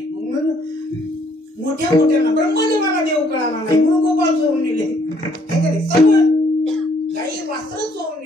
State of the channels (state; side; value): normal; both; correlation 0.66